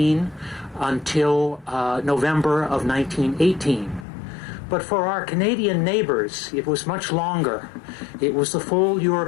until November of 1918. But for our Canadian neighbors, it was much longer. It was the full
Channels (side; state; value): right; drops out; at 4.0 s